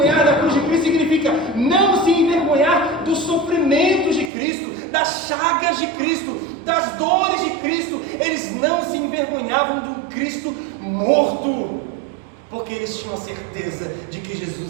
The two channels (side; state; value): left; drops out; at 4.3 s